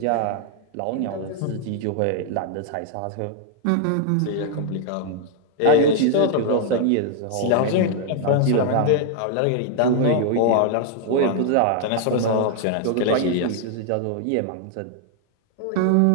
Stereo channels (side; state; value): both; different; correlation 0.00